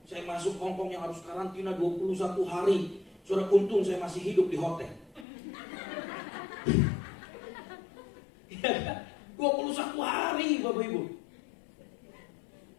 Saya masuk Hong Kong yang harus karantina 21 hari. Saudara, untung saya masih hidup di hotel. 21 hari Bapak Ibu.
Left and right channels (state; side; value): drops out; right; at 5.2 s